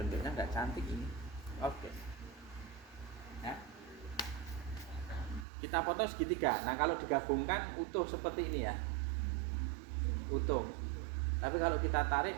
nggak cantik ini. Oke. Ya. Kita potong segitiga. Nah, kalau digabungkan utuh seperti ini ya. Utuh. Tapi kalau kita tarik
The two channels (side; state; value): left; drops out; at 5.5 s